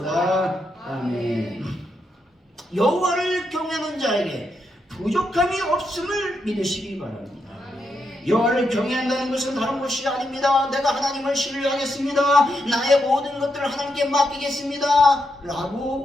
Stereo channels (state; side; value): normal; both; correlation 0.82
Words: 아멘. 여호와를 경외하는 자에게 부족함이 없음을 믿으시기 바랍니다. 여호와를 경외한다는 것은 다른 것이 아닙니다. 내가 하나님을 신뢰하겠습니다. 나의 모든 것들을 하나님께 맡기겠습니다.